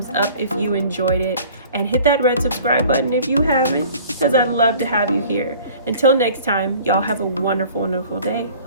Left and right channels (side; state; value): both; inverted; correlation -0.49